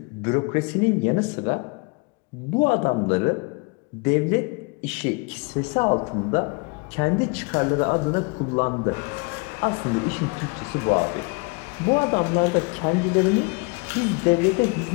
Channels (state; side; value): quieter; right; 29.8 dB